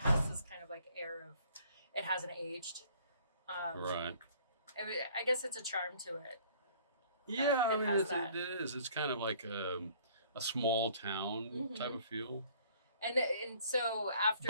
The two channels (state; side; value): inverted; both; correlation -0.55